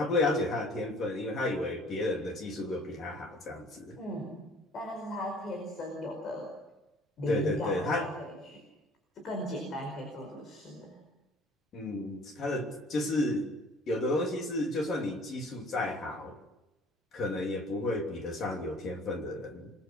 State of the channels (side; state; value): both; normal; correlation 0.52